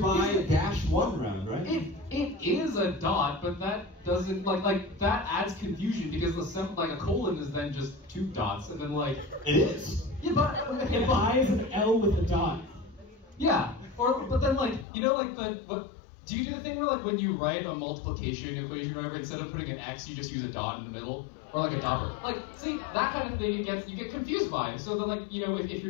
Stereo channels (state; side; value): drops out; right; at 14.9 s